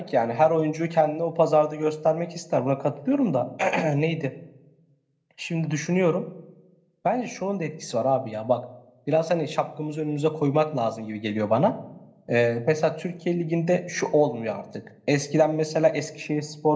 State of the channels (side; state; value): both; identical; correlation 1.00